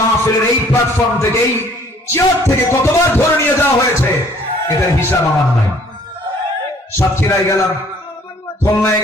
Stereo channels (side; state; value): both; normal; correlation 0.58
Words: এই প্ল্যাটফর্ম থেকে, এই চেয়ার থেকে কতবার ধরে নিয়ে যাওয়া হয়েছে, এটার হিসাব আমার নাই। সাতক্ষীরায় গেলাম, খুলনায়